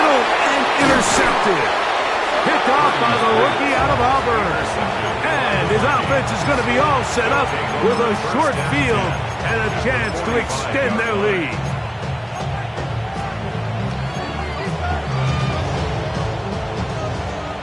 and intercepted. Picked off by the rookie out of Auburn. And his offense is going to be all set up with a short field and a chance to extend their lead.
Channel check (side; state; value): both; identical; correlation 1.00